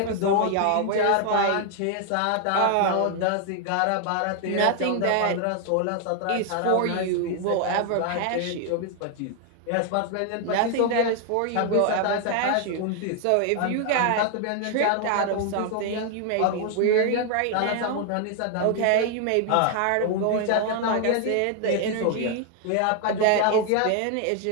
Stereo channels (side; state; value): both; different; correlation 0.00